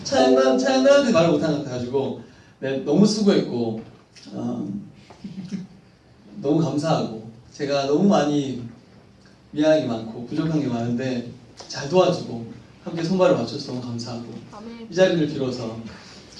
차양단한테 말을 못한 것 같아가지고 네, 너무 수고했고 너무 감사하고 제가 너무 많이 미안한 게 많고 부족한 게 많은데 잘 도와주고 함께 손발을 맞춰서 너무 감사하고 이 자리를 빌어서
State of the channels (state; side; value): identical; both; correlation 1.00